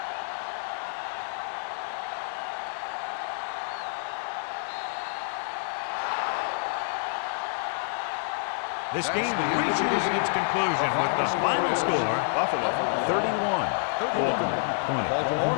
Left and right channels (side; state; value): right; silent; digital silence